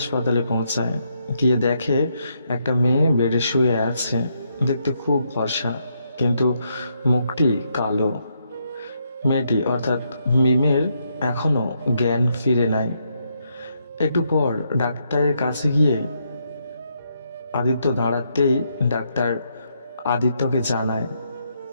পৌঁছায়। গিয়ে দেখে একটা মেয়ে বেডে শুয়ে আছে। দেখতে খুব ফর্সা, কিন্তু মুখটি কালো। মেয়েটি অর্থাৎ মিমের এখনো জ্ঞান ফিরে নাই। একটু পর ডাক্তারের কাছে গিয়ে আদিত্য দাঁড়াতেই ডাক্তার আদিত্যকে জানায়,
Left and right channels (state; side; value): inverted; both; correlation -0.77